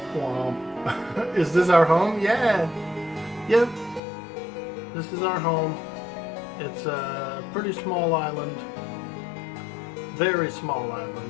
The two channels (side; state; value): right; drops out; at 4.0 s